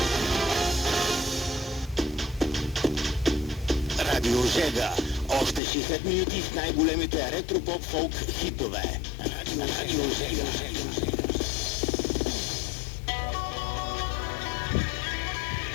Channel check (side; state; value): right; drops out; at 5.6 s